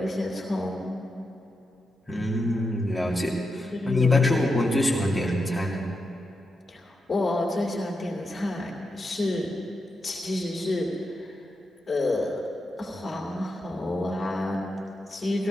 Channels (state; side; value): normal; both; correlation 0.86